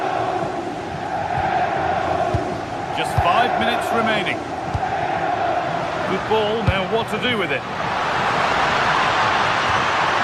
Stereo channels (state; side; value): identical; both; correlation 1.00